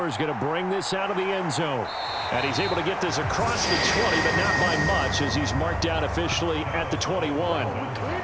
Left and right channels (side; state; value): both; identical; correlation 1.00